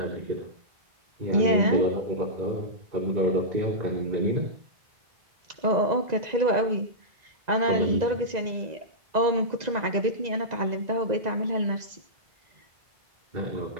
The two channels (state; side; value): late; left; 2.0 ms